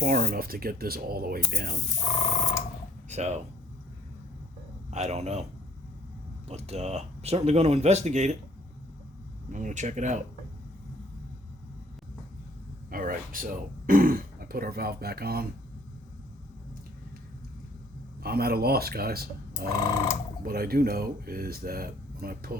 enough to get this all the way down. So, I don't know. But I'm certainly going to investigate it. I'm going to check it out. Alright, so I put our valve back on. I'm at a loss, guys. What I do know is that when I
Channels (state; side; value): normal; both; correlation 0.61